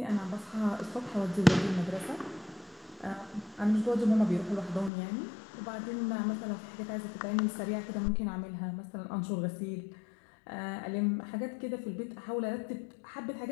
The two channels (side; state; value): right; drops out; at 4.9 s